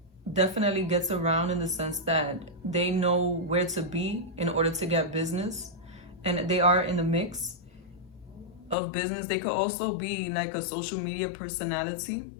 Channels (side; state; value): right; drops out; at 8.8 s